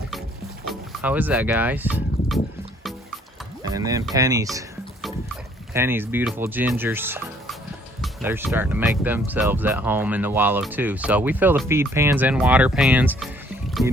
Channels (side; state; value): both; normal; correlation 0.62